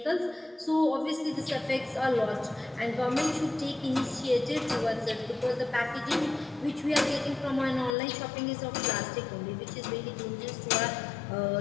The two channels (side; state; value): right; drops out; at 8.0 s